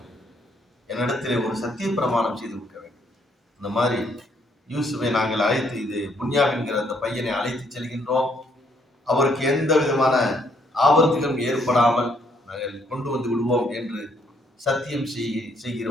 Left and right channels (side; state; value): both; normal; correlation 0.70